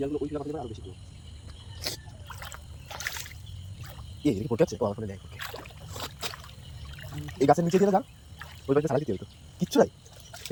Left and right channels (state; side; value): identical; both; correlation 1.00